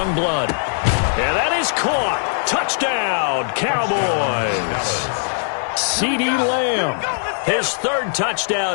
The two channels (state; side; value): silent; right; digital silence